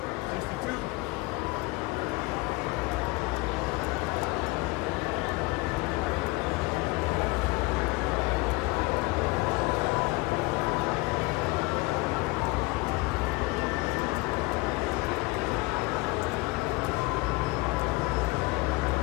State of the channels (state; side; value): quieter; right; 23.8 dB